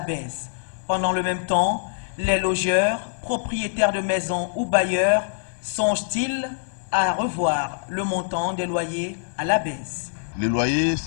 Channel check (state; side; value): silent; right; 57 dB below the other